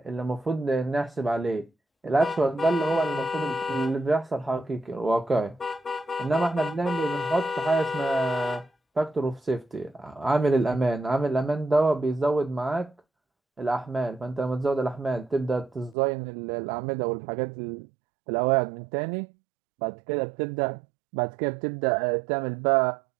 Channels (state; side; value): drops out; left; at 16.0 s